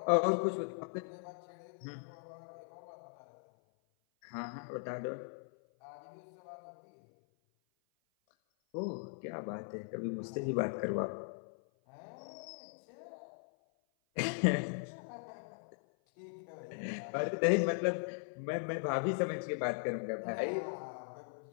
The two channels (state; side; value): silent; right; 52 dB below the other